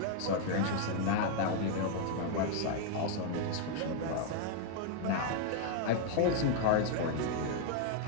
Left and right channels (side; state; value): both; different; correlation 0.00